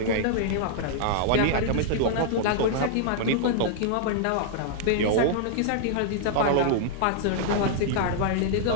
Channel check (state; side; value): different; both; correlation -0.01